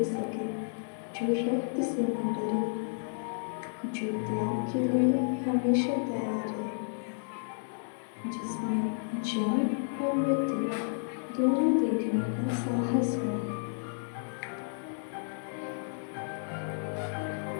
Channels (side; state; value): right; silent; digital silence